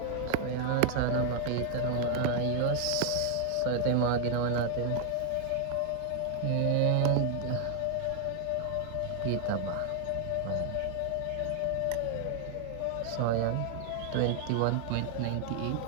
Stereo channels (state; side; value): different; both; correlation 0.00